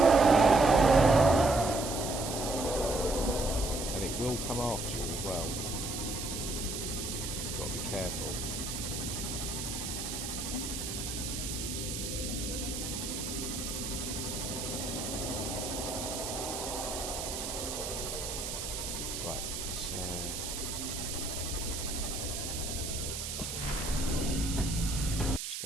And it will come after you as well. Got to be careful. Right, let's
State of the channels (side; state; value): right; noise; hiss, 5 dB below the sound